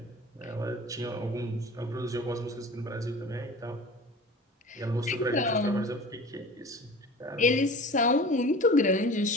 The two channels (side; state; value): both; normal; correlation 0.39